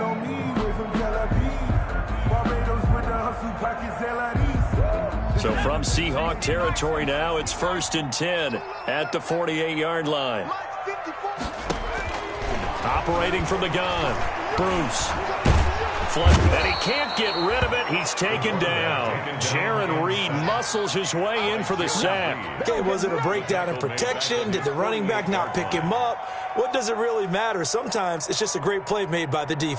So from Seahawk territory now, it's 1st and 10 at the 48-yard line. Operating from the gun, Bruce. And he can't get rid of it. He's taken down. Jaron Reed muscles his way in for the sack. Okay, was it a breakdown in protection? Did the running back not pick him up? What does it really matter? Sometimes it's just a great play made by the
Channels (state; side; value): identical; both; correlation 1.00